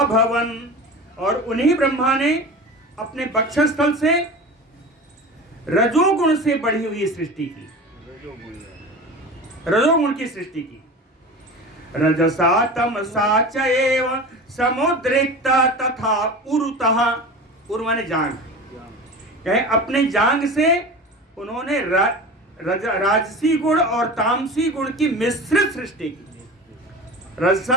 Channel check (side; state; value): both; normal; correlation 0.33